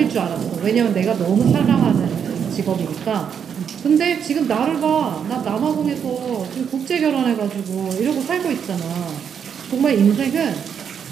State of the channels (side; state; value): left; quieter; 7.6 dB